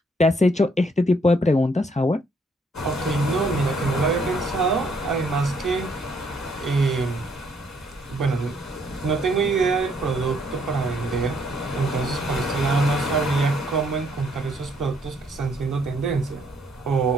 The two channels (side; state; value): both; normal; correlation 0.68